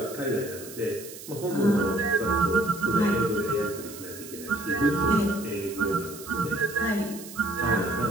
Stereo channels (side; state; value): right; noise; hiss, 14 dB below the sound